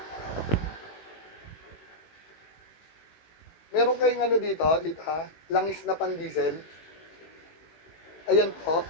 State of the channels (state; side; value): late; right; 19 ms